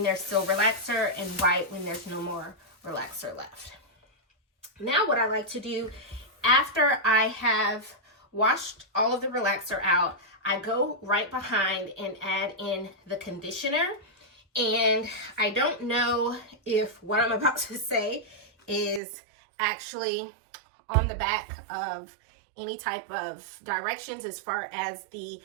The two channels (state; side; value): drops out; left; at 19.0 s